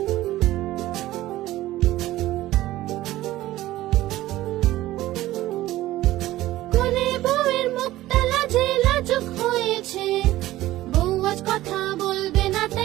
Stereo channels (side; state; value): left; quieter; 15.9 dB